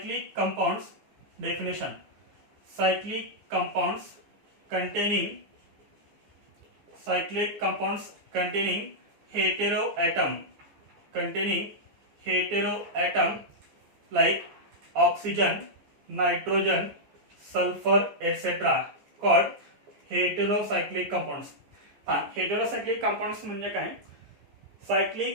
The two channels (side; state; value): left; late; 14 ms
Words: compounds. Definition, cyclic compounds containing, cyclic compounds containing hetero atom, containing hetero atom like oxygen, nitrogen, sulfur etc. called heterocyclic compounds. Heterocyclic compounds म्हणजे काय,